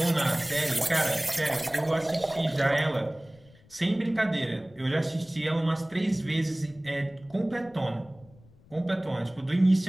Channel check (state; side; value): noise; left; rumble, 26 dB below the sound